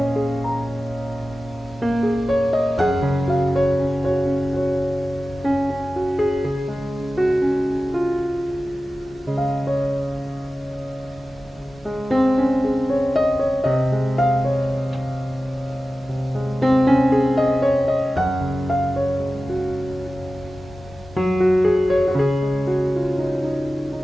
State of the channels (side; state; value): both; normal; correlation 0.95